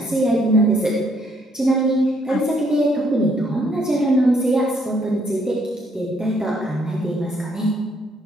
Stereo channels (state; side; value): normal; both; correlation 0.69